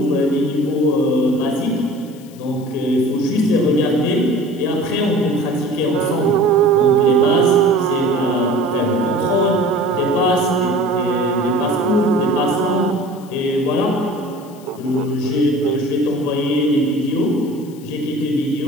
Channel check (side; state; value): left; noise; hiss, 25 dB below the sound